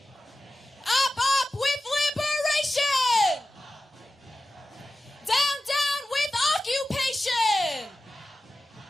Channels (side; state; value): both; normal; correlation 0.95